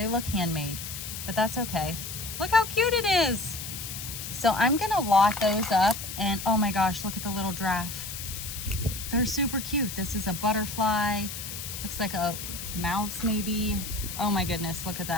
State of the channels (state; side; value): noise; left; hiss, 8 dB below the sound